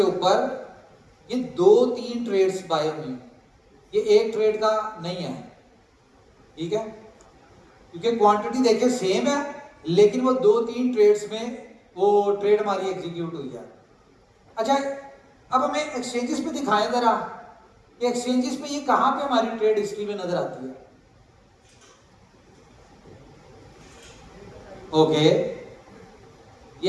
ऊपर ये 2-3 ट्रेड्स बाय हुई, ये एक ट्रेड का नहीं है, ठीक है, क्योंकि क्वांटिटी देखिए सेम है, लेकिन वो 2-3 ट्रेड्स में वो ट्रेड हमारी एग्जीक्यूट हुई है। अच्छा अब हमें एक्सचेंजेस पे दिखाएं जरा, कि एक्सचेंजेस पे ये कहां पे हमारी ट्रेड हिस्ट्री में नजर आती है। ओके ये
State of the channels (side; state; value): both; identical; correlation 1.00